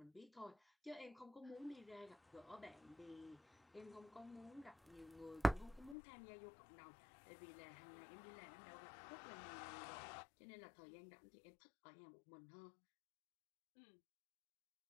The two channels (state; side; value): drops out; right; at 6.0 s